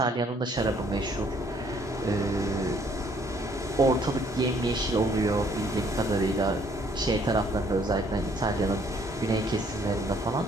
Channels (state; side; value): normal; both; correlation 0.63